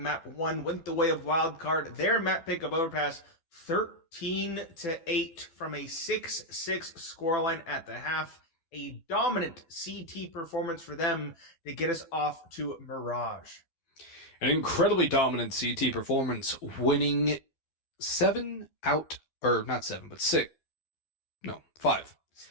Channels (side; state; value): right; late; 12 ms